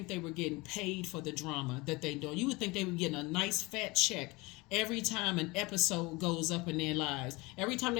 they were getting paid for the drama that they do. You would think they were getting a nice fat check every time an episode goes up in their lives. Every time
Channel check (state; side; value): quieter; right; 23.9 dB